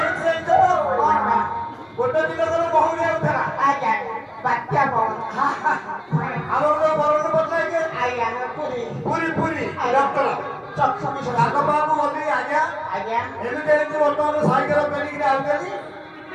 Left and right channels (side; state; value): both; identical; correlation 1.00